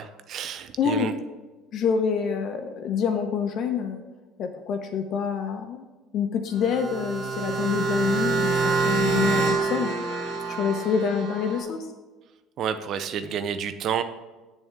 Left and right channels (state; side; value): normal; both; correlation 0.57